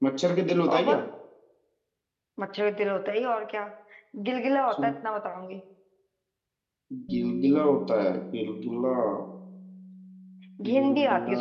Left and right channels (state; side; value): identical; both; correlation 1.00